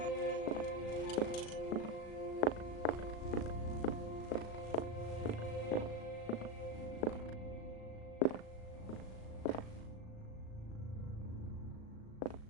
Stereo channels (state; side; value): late; right; 37 ms